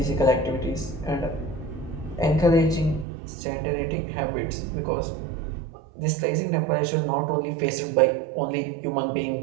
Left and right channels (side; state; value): left; drops out; at 3.1 s